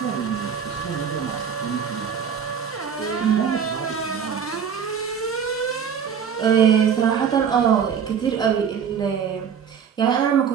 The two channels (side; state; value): left; quieter; 7.3 dB